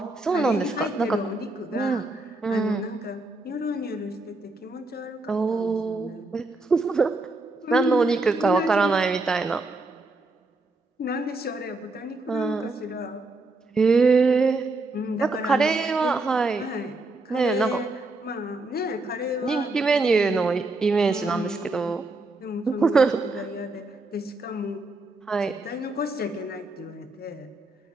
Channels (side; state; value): left; quieter; 3.1 dB